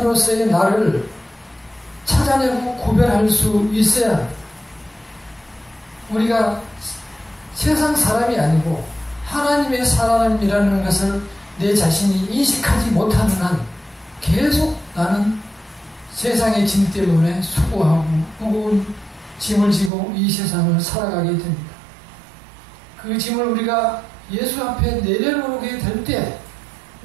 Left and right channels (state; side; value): drops out; left; at 19.9 s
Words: 나를 찾아내고 구별할 수 있어야 합니다. 우리가 세상 사람이 아니고 하나님의 사람이라는 것을 내 자신이 인식하지 못하는 한 계속 나는 세상의 짐 때문에 수고하고 무거운 짐을 지고 이 세상을 살아가게 됩니다. 그 짐을 우리가 예수 앞에 내려놓게 될 때